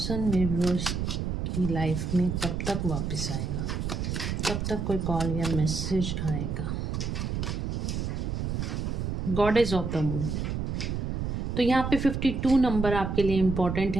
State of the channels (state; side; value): noise; right; rumble, 2 dB below the sound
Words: मेरे व्यूअर्स की लाइफ में कब तक वापस आएगा, कब तक कोई कॉल या मैसेज आएगा। गॉडेस ऑफ द मून, तो यहाँ पे 52 नंबर आपके लिए इम्पॉर्टेंट